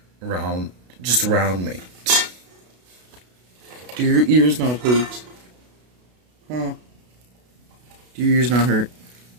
just around me. Do your ears not hurt? Huh? Do your ears not hurt?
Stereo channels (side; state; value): left; late; 32 ms